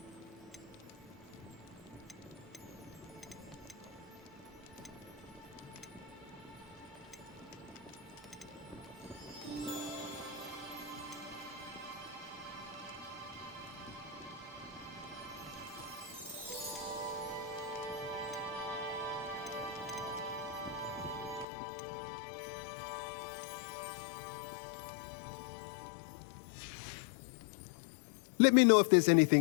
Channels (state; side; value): drops out; right; at 21.5 s